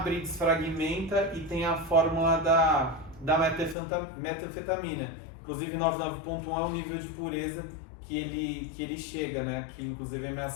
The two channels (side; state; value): right; drops out; at 3.8 s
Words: desfragmenta e tem a fórmula da metanfetamina. Inclusive 99.1 é o nível de pureza que ele chega, né? Que inclusive é a minha